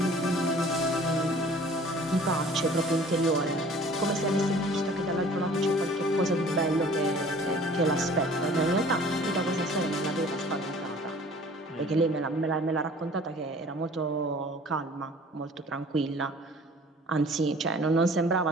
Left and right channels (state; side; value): normal; both; correlation 0.49